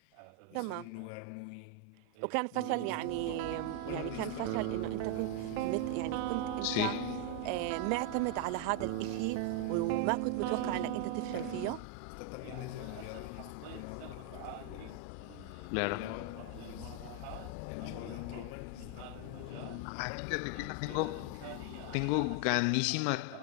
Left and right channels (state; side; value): different; both; correlation 0.00